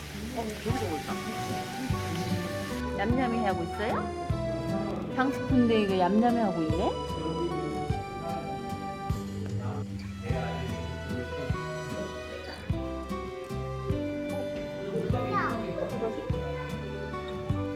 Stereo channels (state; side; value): identical; both; correlation 1.00